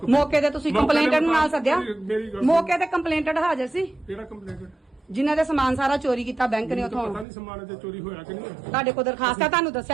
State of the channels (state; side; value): drops out; left; at 7.2 s